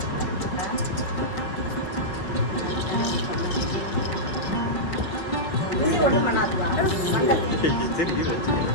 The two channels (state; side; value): late; right; 5.4 ms